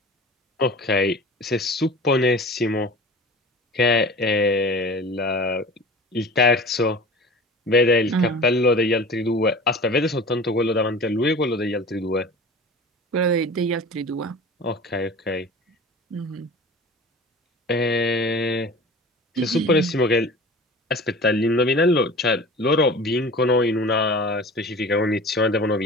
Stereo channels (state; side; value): normal; both; correlation 0.39